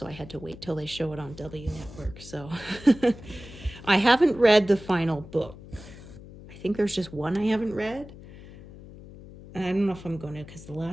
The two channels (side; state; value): left; noise; hum, 17 dB below the sound